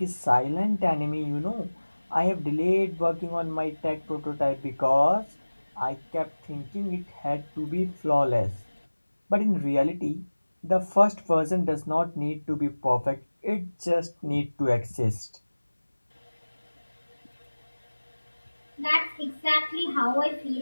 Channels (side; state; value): both; inverted; correlation -1.00